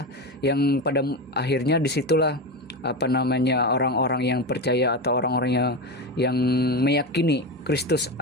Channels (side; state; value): both; normal; correlation 0.19